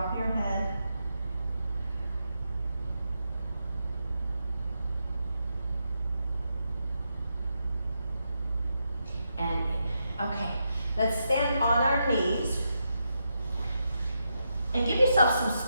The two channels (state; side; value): inverted; both; correlation -0.84